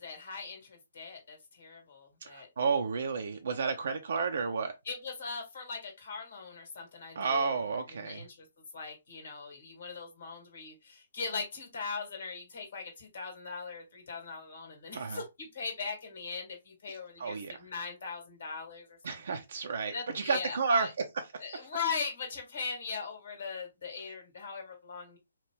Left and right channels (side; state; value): both; inverted; correlation -0.69